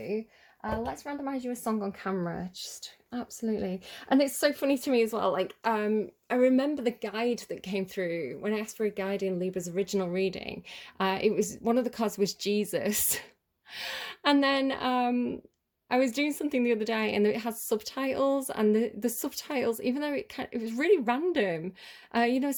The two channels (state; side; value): identical; both; correlation 1.00